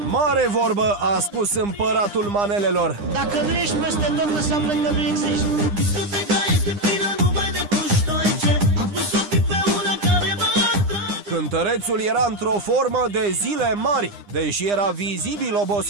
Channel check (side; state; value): left; late; 9.9 ms